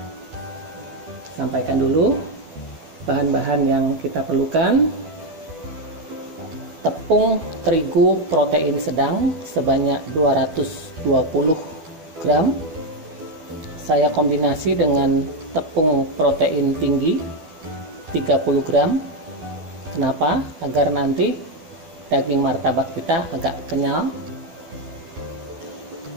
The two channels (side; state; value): left; late; 12 ms